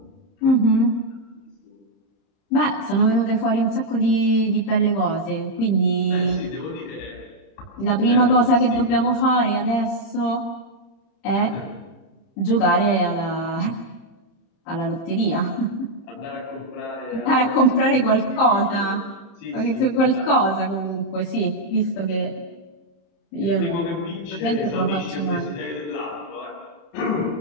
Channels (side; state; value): right; late; 30 ms